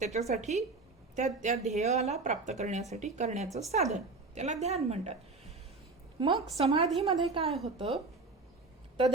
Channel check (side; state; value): left; quieter; 3.7 dB